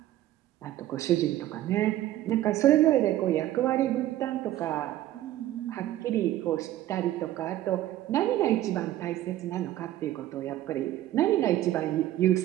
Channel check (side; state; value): left; quieter; 13.9 dB